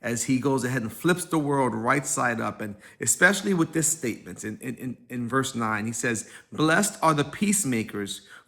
as he goes ahead and flips the world right side up. And especially with this statement in verse 9, he says, "Blessed are the peacemakers,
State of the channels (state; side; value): identical; both; correlation 1.00